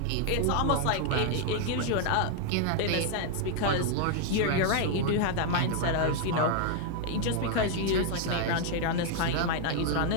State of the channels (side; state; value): both; different; correlation 0.00